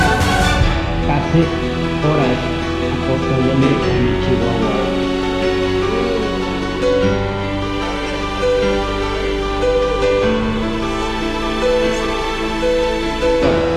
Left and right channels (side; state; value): both; identical; correlation 1.00